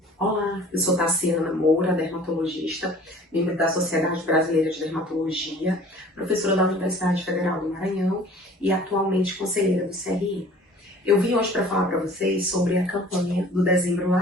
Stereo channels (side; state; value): both; normal; correlation 0.48